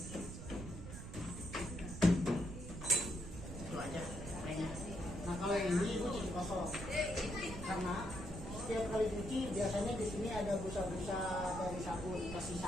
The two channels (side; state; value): right; noise; rumble, 9 dB below the sound